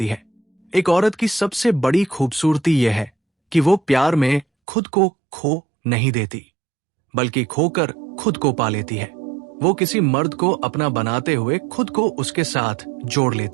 है। एक औरत की सबसे बड़ी खूबसूरती यह है कि वो प्यार में खुद को खो नहीं देती, बल्कि खोकर खुद को पा लेती है। वो किसी मर्द को अपना बनाते हुए खुद को उसके साथ जोड़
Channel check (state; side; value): drops out; left; at 4.5 s